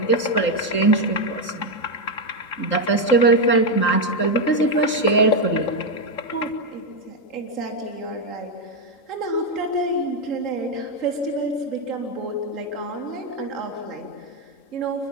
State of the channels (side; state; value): right; late; 3.8 ms